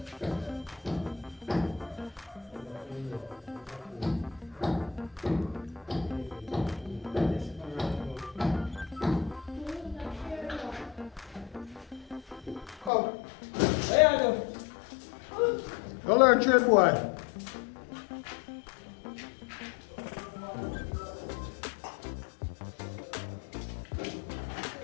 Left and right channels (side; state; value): right; drops out; at 12.9 s